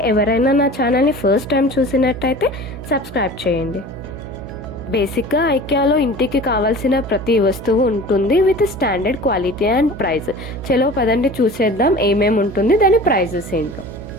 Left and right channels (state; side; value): noise; right; hum, 12 dB below the sound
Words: ఎవరైనా నా ఛానల్ని ఫస్ట్ టైం చూసినట్టయితే సబ్స్క్రైబ్ చేయండి. బేసిక్గా ఐకియాలో ఇంటికి కావాల్సిన ప్రతి వస్తువు ఉంటుంది with standard quality and price. చలో పదండి చూసేద్దాం ఏమేమి ఉంటుంది, దాని ప్రైజెస్ ఏంటో.